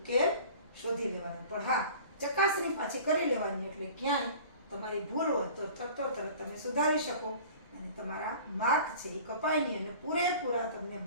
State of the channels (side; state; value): both; inverted; correlation -0.44